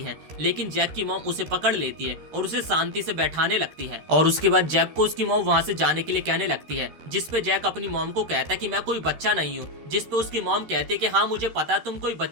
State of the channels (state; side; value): late; left; 13 ms